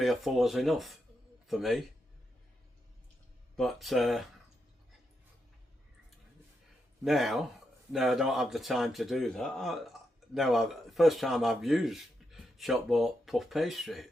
or 4 is enough for me, but now I don't have the time to do that. First time I've used shop bought puff pastry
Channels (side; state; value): both; normal; correlation 0.84